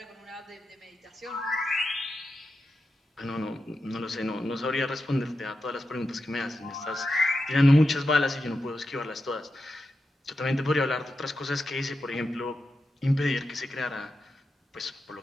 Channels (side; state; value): both; normal; correlation 0.89